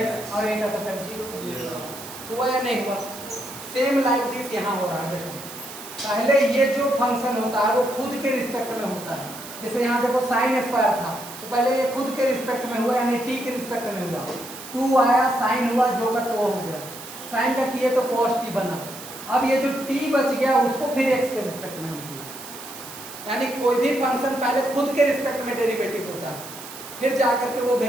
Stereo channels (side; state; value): right; noise; hiss, 13 dB below the sound